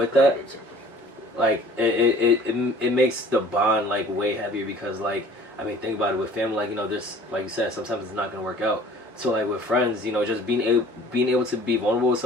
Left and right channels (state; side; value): normal; both; correlation 0.49